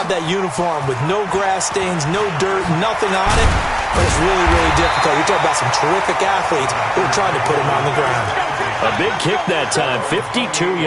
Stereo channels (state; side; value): identical; both; correlation 1.00